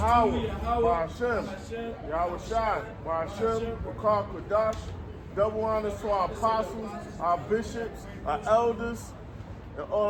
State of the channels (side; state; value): both; identical; correlation 1.00